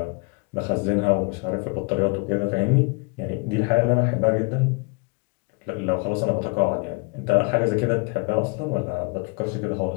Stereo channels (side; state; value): right; quieter; 31.5 dB